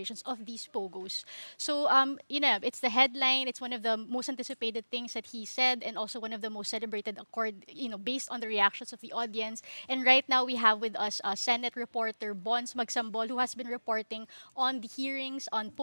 of these Pogos. So, it's the headline. It's one of the most anticipated things that he said and also one of the most celebrated based on the reactions of the audience. And right now, we have with us Senate reporter Bons Magsambol, who has been reporting on the hearings on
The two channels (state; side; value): inverted; both; correlation -1.00